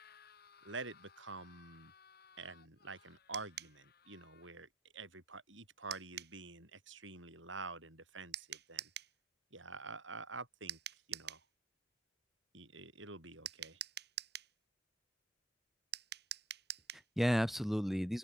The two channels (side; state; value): both; normal; correlation 0.64